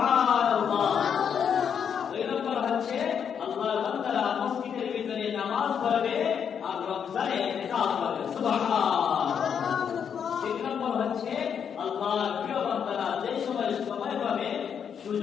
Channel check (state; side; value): quieter; right; 7.6 dB